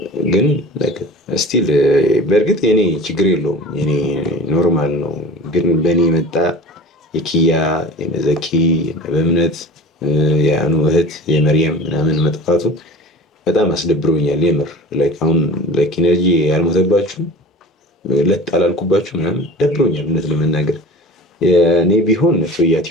ግን ስቲል በእርግጥ የኔ ችግር የለውም፣ የኔ ኖርማል ነው። ግን በእኔ መጣ የኪያ የነዘኪ በእምነት የአኑ እህት የመርየም ምናምን መጥፋቱ በጣም አስደብሮኛል። የምር አሁን ኢነርጂ ያልሞተባችሁ ለጥ አላልኩባችሁ ምናምን ደብሮኛል እውነት ለመናገር። እኔ ቢሆን ቶያ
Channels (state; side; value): normal; both; correlation 0.38